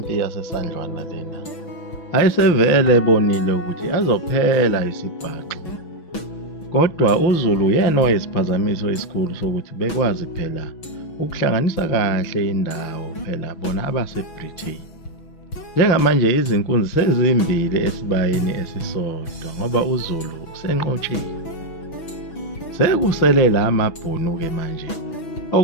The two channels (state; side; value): late; right; 6.1 ms